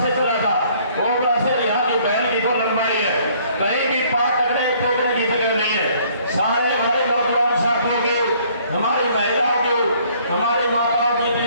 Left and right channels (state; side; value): inverted; both; correlation -0.61